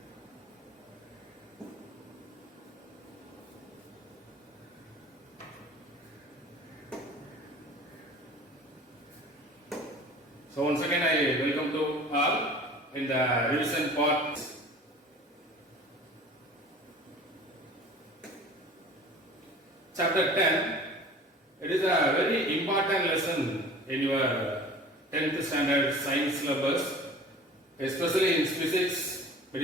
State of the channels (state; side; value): normal; both; correlation 0.43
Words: So once again I welcome to all in the revision part. Chapter 10, it is a very important lesson in your 10th standard science syllabus, especially in physics. It